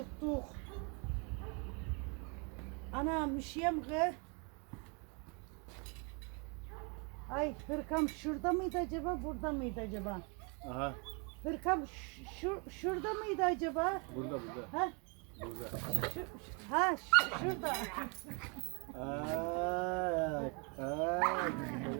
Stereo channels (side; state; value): left; quieter; 34.1 dB